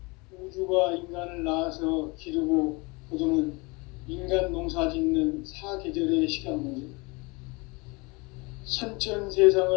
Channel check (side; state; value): right; quieter; 27.1 dB